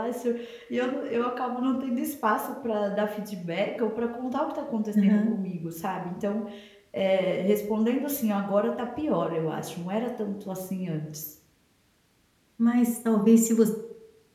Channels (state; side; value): identical; both; correlation 1.00